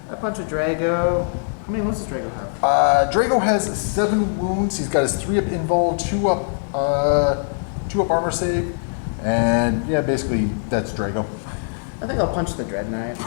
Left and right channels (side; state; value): right; silent; digital silence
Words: I punch a Drago. How many wounds does Drago have? Drago has 7 wounds. He's got his 3-up invul, 2 up armor save, and yeah, basically that's Drago. I think I'll punch the Dread Knight.